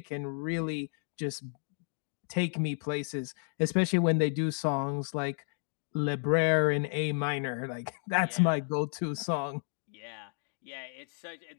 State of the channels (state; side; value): silent; right; 56 dB below the other